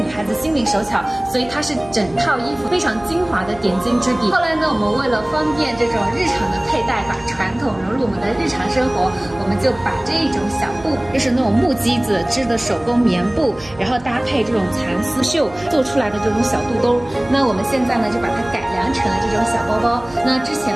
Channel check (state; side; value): noise; right; hum, 22 dB below the sound